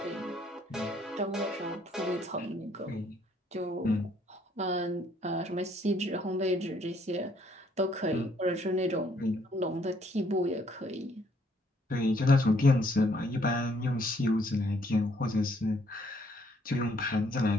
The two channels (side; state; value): both; normal; correlation 0.66